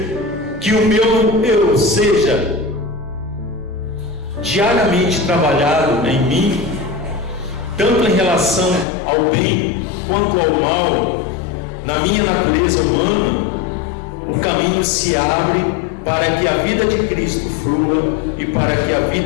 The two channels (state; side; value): drops out; right; at 8.8 s